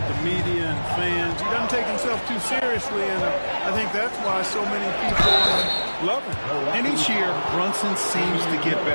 the media and fans. He doesn't take himself too seriously, and I think that's why so many people love him. And each year, Brunson seems to get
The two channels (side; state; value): both; inverted; correlation -1.00